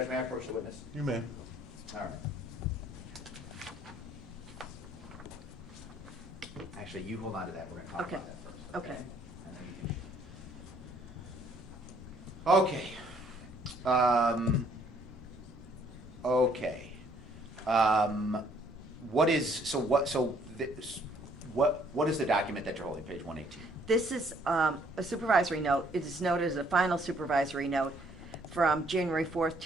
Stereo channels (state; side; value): normal; both; correlation 0.64